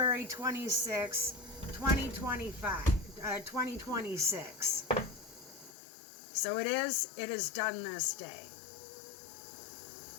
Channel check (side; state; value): right; drops out; at 5.8 s